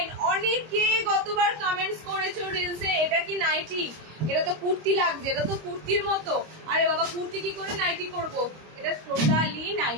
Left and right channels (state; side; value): late; left; 26 ms